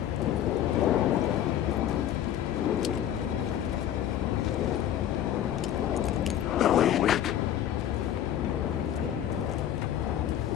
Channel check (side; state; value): right; quieter; 11.0 dB